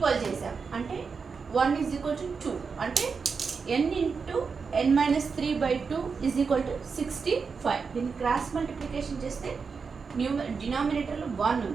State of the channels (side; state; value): left; quieter; 5.3 dB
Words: చేసాం. అంటే 1 ఈజ్ ఈక్వల్ టు 2 అంటే n into n minus 3/2 is equal to 65. దీన్ని క్రాస్ మల్టిప్లికేషన్ చేస్తే డినామినేటర్లో 1